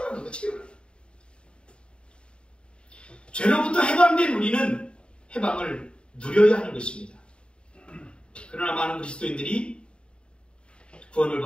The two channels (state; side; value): late; right; 0.054 ms